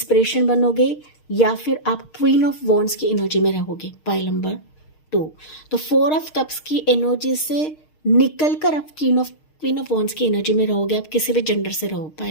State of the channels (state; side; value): late; right; 6.5 ms